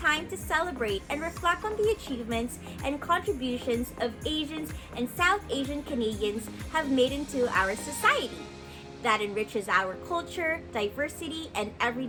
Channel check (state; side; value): identical; both; correlation 1.00